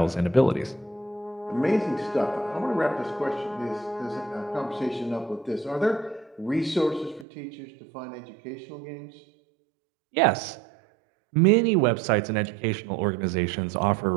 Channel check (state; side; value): drops out; left; at 7.2 s